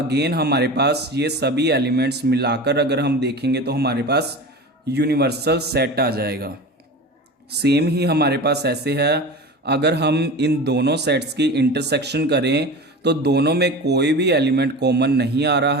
हमारे पास ये सभी एलिमेंट्स मिलाकर अगर हम देखेंगे तो हमारे पास यूनिवर्सल सेट आ जाएगा। सेम ही हमारे पास ऐसे है, अगर हम इन दोनों सेट्स की इंटरसेक्शन करें तो दोनों में कोई भी एलिमेंट कॉमन नहीं आ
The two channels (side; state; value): both; normal; correlation 0.32